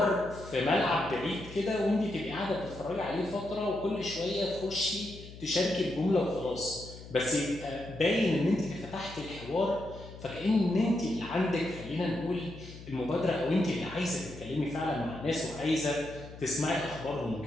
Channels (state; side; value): noise; left; hum, 15 dB below the sound